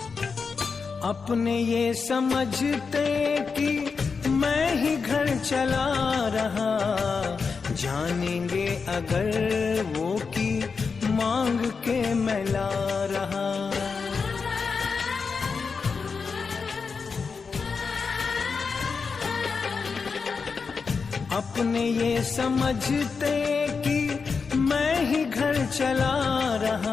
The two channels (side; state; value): right; quieter; 5.2 dB